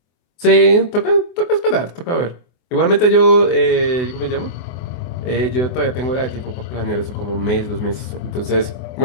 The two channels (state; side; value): late; right; 24 ms